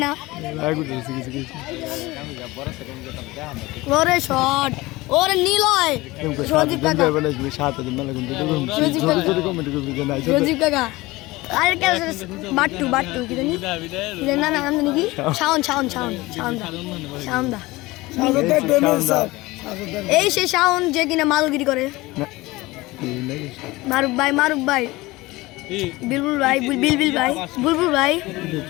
না ওরে শট ওরে নিলয় সজীব কাকা সজীব কাকা আরে কে বাট্টু কি জানি না নাম জানি কি শাওন দা এই সে শাওন যে কিনা মালগিরি করে মারুফ ভাই বুলবুল ভাই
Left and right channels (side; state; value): right; quieter; 20.5 dB